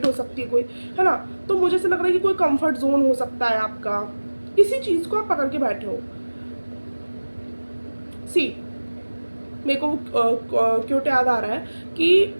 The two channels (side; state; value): both; inverted; correlation -1.00